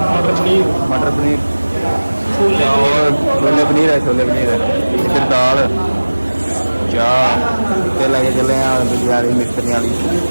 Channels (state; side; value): inverted; both; correlation -1.00